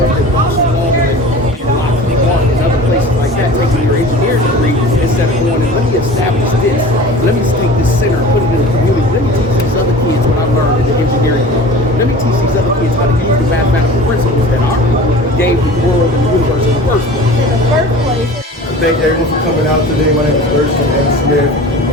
engineering degree instead of going and let me establish this. Let me take this center and put it in the community. Let me teach these other kids what I learned in the engineering degree. Let me teach these other kids how to use the mathematical principles that our people gave the world and the universe in the first place. Thank everyone for coming out today. My name is Thurston M. Smith.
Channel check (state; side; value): normal; both; correlation 0.40